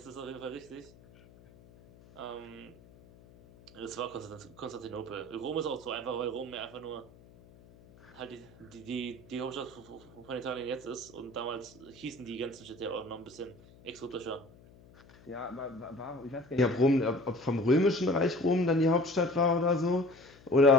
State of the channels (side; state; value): left; noise; hum, 24 dB below the sound